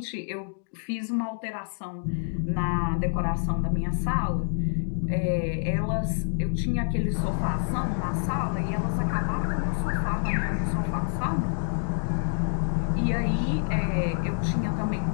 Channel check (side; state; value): right; silent; digital silence